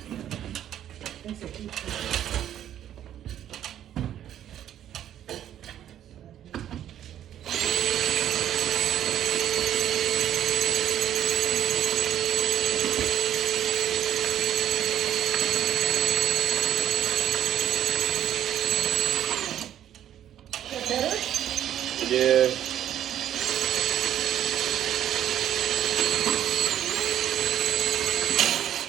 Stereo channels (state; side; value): quieter; left; 10.9 dB